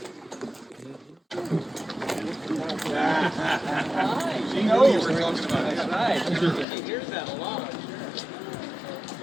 She knows you were talking about it. Right. He hears that a lot.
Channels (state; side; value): drops out; right; at 6.7 s